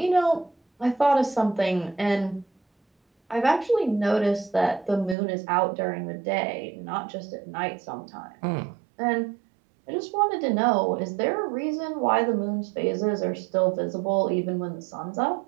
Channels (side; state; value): left; drops out; at 5.2 s